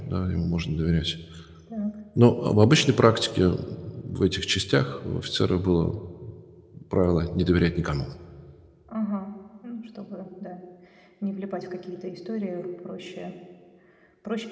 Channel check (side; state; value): both; identical; correlation 1.00